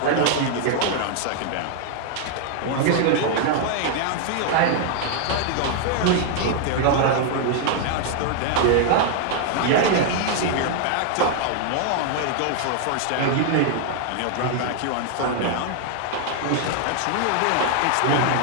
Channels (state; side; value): different; both; correlation 0.00